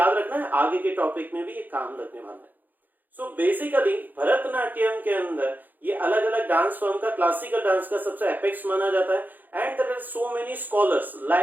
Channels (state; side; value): late; left; 0.086 ms